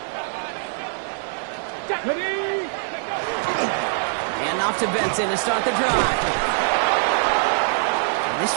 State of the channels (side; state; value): left; silent; digital silence